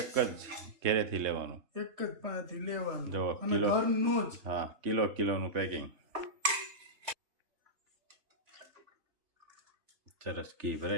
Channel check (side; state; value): left; late; 3.3 ms